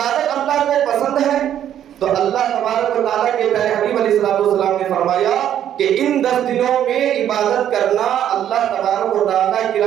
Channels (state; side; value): quieter; left; 10.5 dB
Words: اللہ کو پسند ہے؟ تو اللہ تبارک و تعالیٰ کے پیارے حبیب علیہ السلام نے فرمایا کہ ان 10 دنوں میں عبادت کرنا اللہ تبارک و تعالیٰ کی